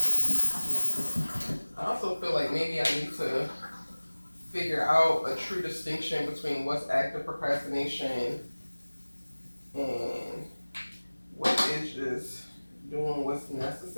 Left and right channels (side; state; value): both; inverted; correlation -1.00